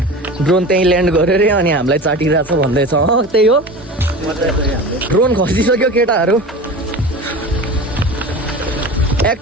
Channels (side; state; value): both; normal; correlation 0.32